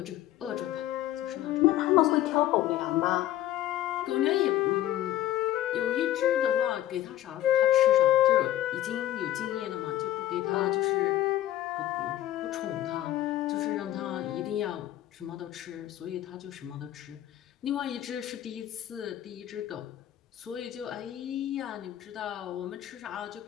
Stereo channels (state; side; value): quieter; right; 13.3 dB